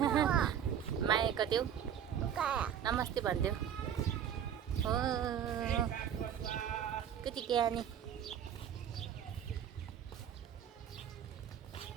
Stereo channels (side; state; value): left; quieter; 9.1 dB